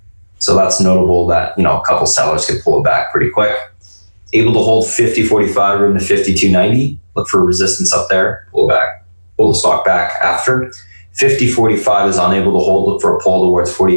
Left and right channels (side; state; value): both; inverted; correlation -1.00